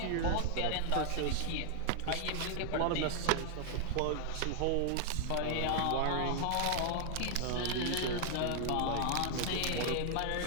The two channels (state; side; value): different; both; correlation 0.00